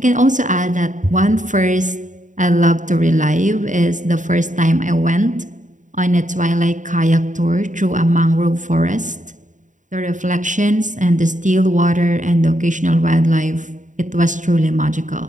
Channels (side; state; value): left; late; 0.36 ms